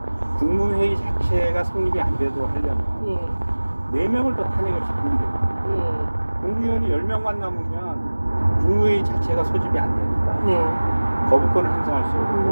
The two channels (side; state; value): both; inverted; correlation -1.00